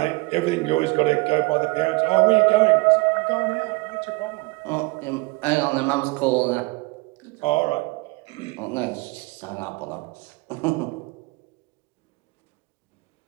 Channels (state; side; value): quieter; left; 25.8 dB